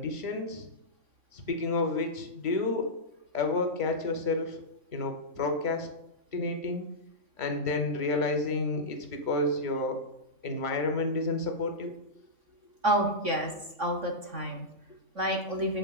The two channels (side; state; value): left; late; 3.6 ms